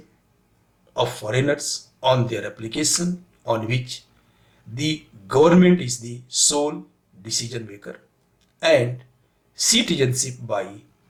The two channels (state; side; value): identical; both; correlation 1.00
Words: of foreigners on their application on which the government is the sole decision maker and citizenship by